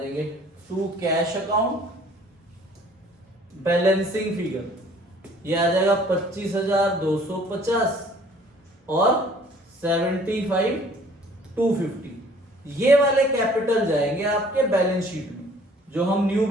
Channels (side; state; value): both; normal; correlation 0.55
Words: to cash account balancing figure, ये आ जाएगा 25,250 और 75,250, ये वाले कैपिटल जाएंगे आपके बैलेंस शीट में, जो हम न्यू